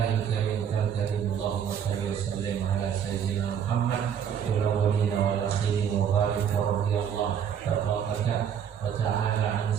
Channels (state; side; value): quieter; left; 8.3 dB